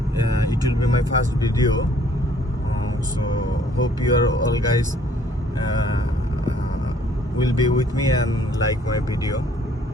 It will be my first video, so hope you are all guys will be with me and like my video.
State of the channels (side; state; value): both; normal; correlation 0.60